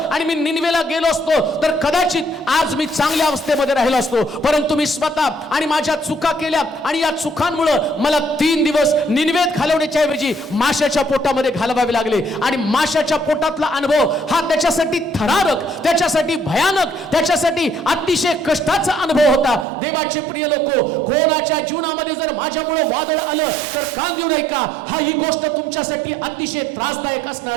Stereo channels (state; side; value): drops out; left; at 19.7 s